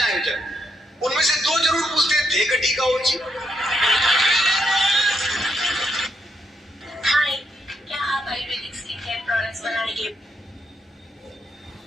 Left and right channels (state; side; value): normal; both; correlation 0.78